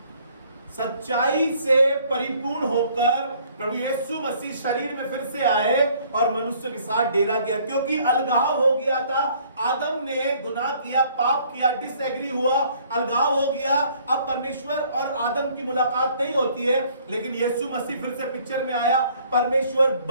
सच्चाई से परिपूर्ण होकर प्रभु यीशु मसीह शरीर में फिर से आए और मनुष्य के साथ डेरा किया, क्योंकि अलगाव हो गया था। आदम ने गुनाह किया, पाप किया, डिसएग्री हुआ, अलगाव हो गया। अब परमेश्वर और आदम की मुलाकात नहीं होती है, लेकिन यीशु मसीह फिर से पिक्चर में आया। परमेश्वर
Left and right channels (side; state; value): both; inverted; correlation -0.60